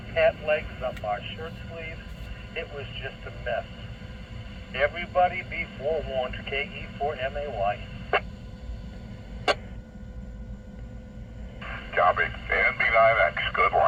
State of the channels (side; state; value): both; identical; correlation 1.00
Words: legs, up our shirt sleeves. It was just a mess. Everybody be forewarned, KE4MAY. Copy. And B9X, good